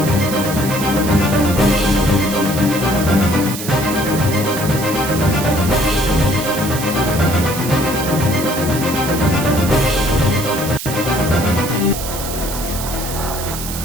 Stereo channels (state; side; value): noise; right; hiss, 8 dB below the sound